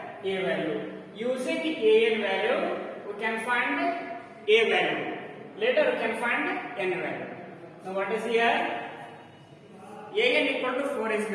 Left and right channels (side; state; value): both; identical; correlation 1.00